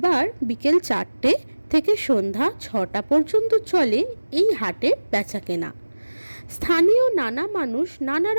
বিকেল 4টে থেকে সন্ধ্যা 6টা পর্যন্ত চলে এই হাটের বেচাকেনা। স্থানীয় নানা মানুষ নানা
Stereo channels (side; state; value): both; inverted; correlation -1.00